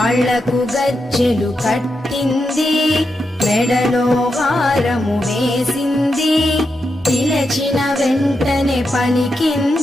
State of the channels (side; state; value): both; normal; correlation 0.86